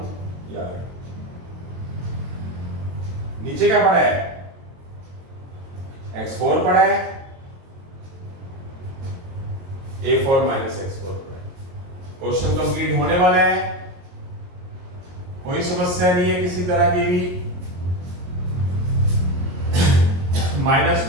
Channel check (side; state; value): left; late; 22 ms